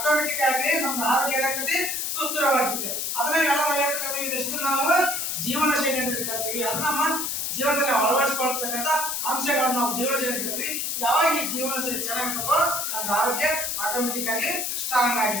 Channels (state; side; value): noise; left; hiss, 1 dB below the sound